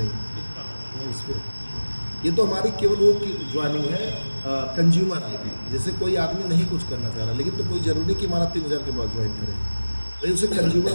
इस इस पे ये तो हमारी केवल वो की ज्वाइनिंग है कंज्यूमर ID। जैसे कोई आदमी नहीं कुछ करना चाह रहा, लेकिन तो कोई ज़रूरी नहीं कि हमारा 3000 के बाद ज्वाइन करे, भाई उसे कंज्यूमर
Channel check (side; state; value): both; inverted; correlation -1.00